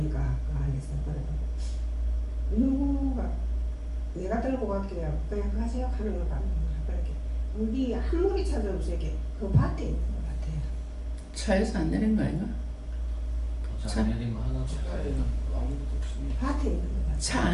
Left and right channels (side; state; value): both; identical; correlation 1.00